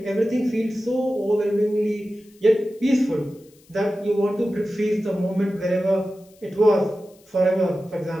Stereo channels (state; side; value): noise; left; hiss, 30 dB below the sound